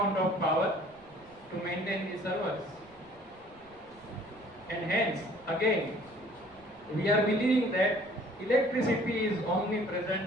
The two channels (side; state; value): right; noise; rumble, 27 dB below the sound